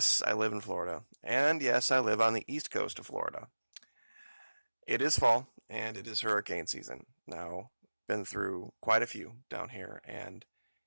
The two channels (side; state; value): both; inverted; correlation -1.00